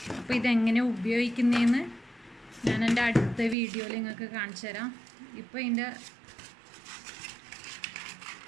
അപ്പോൾ ഇതെങ്ങനെ ഉപയോഗിക്കുന്നതെന്ന് ഞാൻ എൻ്റെ അടുത്ത വീഡിയോയിൽ നിങ്ങൾക്ക് കാണിച്ചു തരാം. ഇപ്പോൾ ഇതിൻ്റെ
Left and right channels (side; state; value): left; drops out; at 3.6 s